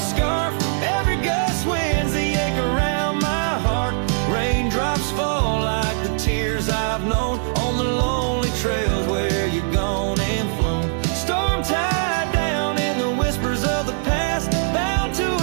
scarf, every gust winds the ache around my heart. Raindrops fall like the tears I've known on the lonely trails where you've gone and flown. Storm tied down in the whispers of the past, bound to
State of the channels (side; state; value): left; silent; digital silence